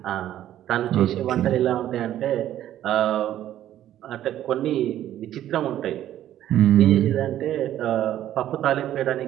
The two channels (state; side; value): quieter; left; 12.2 dB